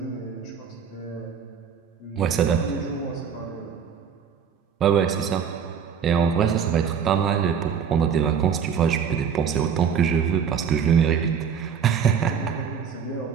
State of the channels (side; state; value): left; quieter; 7.3 dB